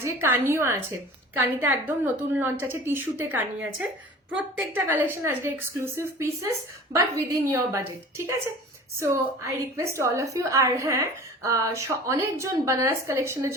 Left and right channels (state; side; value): normal; both; correlation 0.41